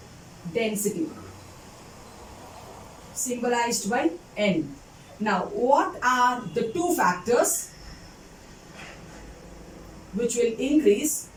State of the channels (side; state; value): both; identical; correlation 1.00